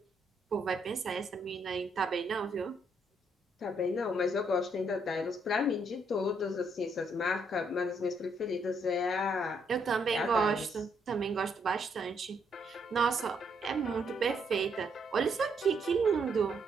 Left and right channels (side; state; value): both; normal; correlation 0.73